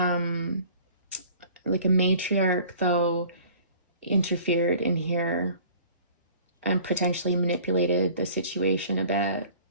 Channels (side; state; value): both; inverted; correlation -0.48